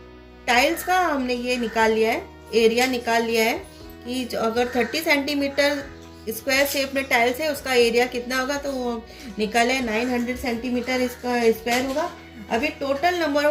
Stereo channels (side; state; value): both; identical; correlation 1.00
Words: टाइल्स का हमने ये निकाल लिया है, एरिया निकाल लिया है कि जो अगर 30 सेंटीमीटर स्क्वायर शेप में टाइल्स है उसका एरिया कितना होगा, तो वो निकाले 900 सेंटीमीटर इसका स्क्वायर होगा। अभी total number